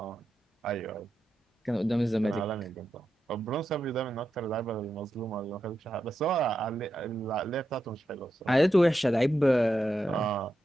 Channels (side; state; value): both; normal; correlation 0.87